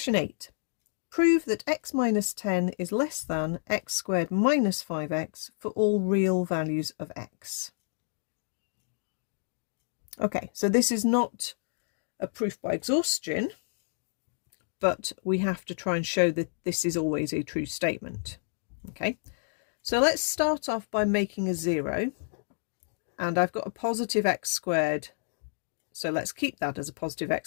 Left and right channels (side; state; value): right; silent; digital silence